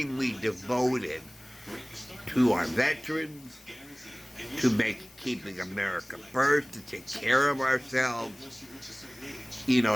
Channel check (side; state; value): left; noise; hiss, 25 dB below the sound